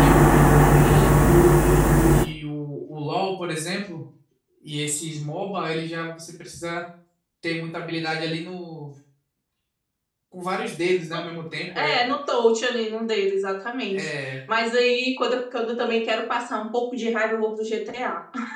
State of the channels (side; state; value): both; identical; correlation 1.00